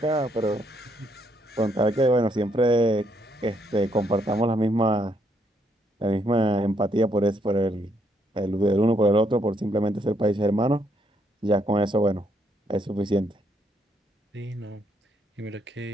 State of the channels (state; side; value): normal; both; correlation 0.73